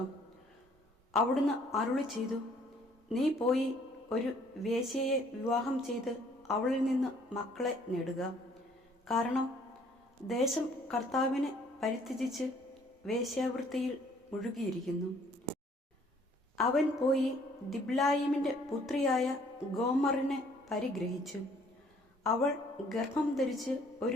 അവിടുന്ന് അരുളി ചെയ്തു, നീ പോയി ഒരു വേശ്യയെ വിവാഹം ചെയ്ത് അവളിൽ നിന്ന് മക്കളെ നേടുക. കാരണം ദേശം കർത്താവിനെ പരിത്യജിച്ച് വേശ്യാവൃത്തിയിൽ മുഴുകിയിരിക്കുന്നു. അവൻ പോയി ദിബ്ലായിമിന്റെ പുത്രിയായ ഗോമറിനെ പരിഗ്രഹിച്ചു. അവൾ ഗർഭം ധരിച്ച്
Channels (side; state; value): both; normal; correlation 0.60